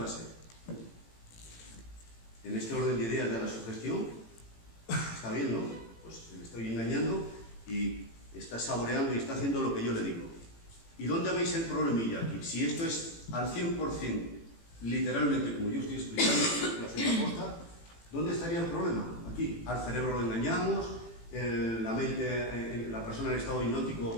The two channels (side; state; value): right; late; 18 ms